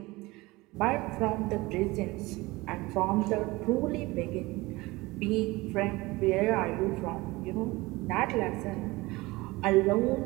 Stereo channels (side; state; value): left; quieter; 21.4 dB